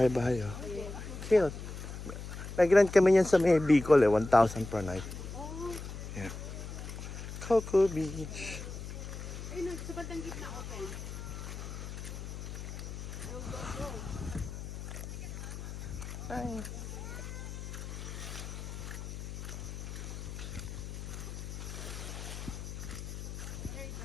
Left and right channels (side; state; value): left; noise; hum, 8 dB below the sound